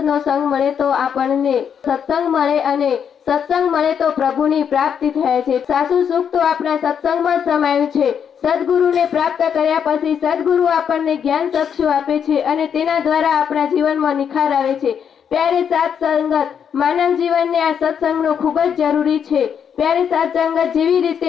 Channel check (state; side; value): quieter; right; 7.8 dB